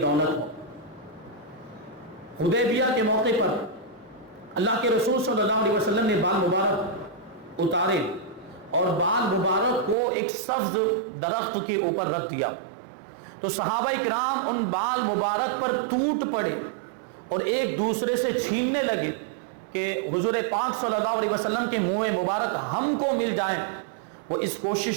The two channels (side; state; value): left; drops out; at 10.0 s